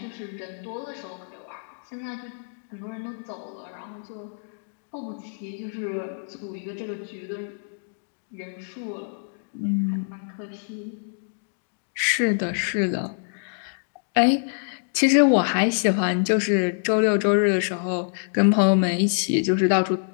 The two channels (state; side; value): silent; right; digital silence